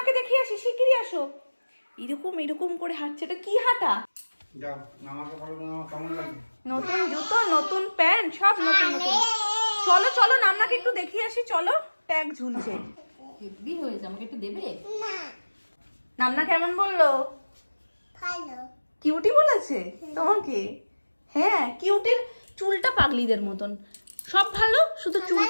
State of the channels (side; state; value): both; inverted; correlation -1.00